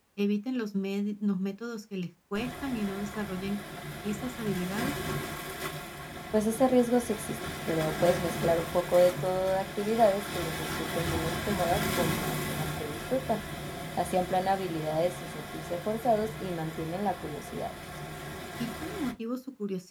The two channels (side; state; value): both; identical; correlation 1.00